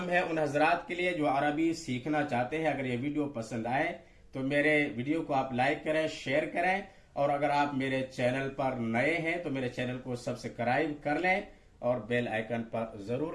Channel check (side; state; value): both; identical; correlation 1.00